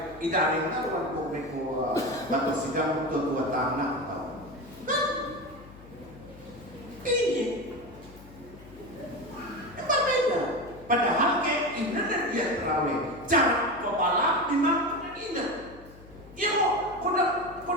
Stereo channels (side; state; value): left; noise; hum, 20 dB below the sound